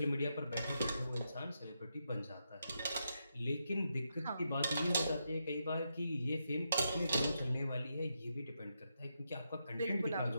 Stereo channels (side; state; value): both; inverted; correlation -0.84